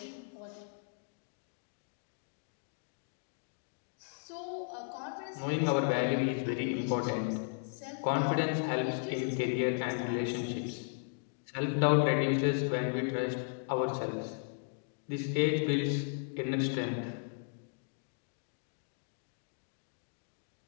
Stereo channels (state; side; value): silent; right; digital silence